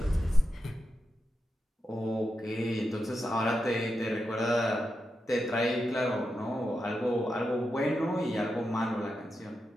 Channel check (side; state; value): both; normal; correlation 0.88